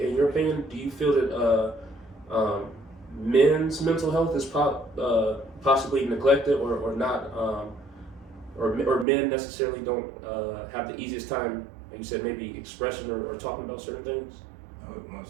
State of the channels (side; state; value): left; drops out; at 9.1 s